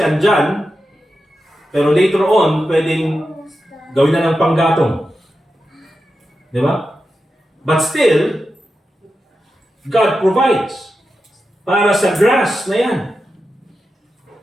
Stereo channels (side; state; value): both; normal; correlation 0.90